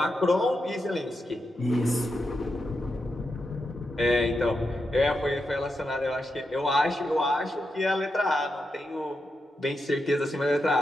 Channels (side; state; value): both; normal; correlation 0.86